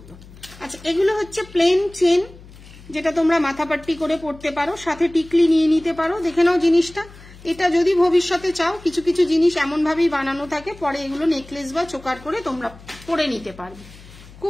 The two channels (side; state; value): left; noise; hum, 20 dB below the sound